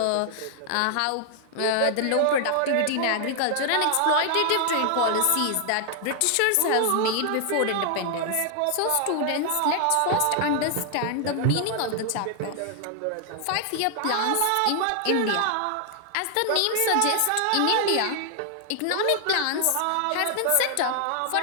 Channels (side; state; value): both; different; correlation 0.00